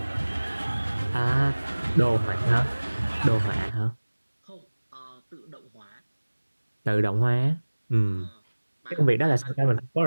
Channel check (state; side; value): inverted; both; correlation -1.00